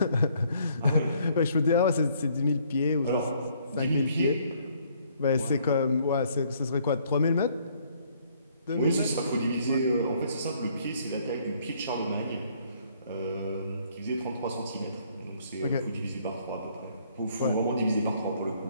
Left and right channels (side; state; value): both; inverted; correlation -0.65